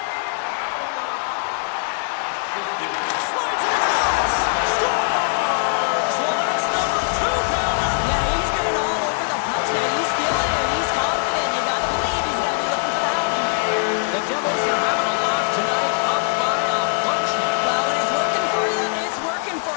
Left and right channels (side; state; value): right; silent; digital silence